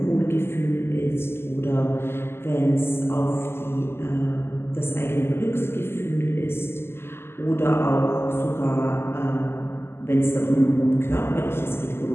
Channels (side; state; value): right; late; 0.12 ms